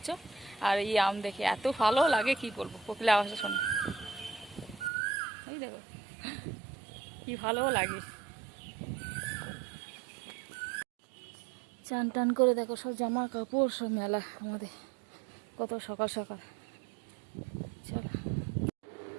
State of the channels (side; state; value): left; drops out; at 4.9 s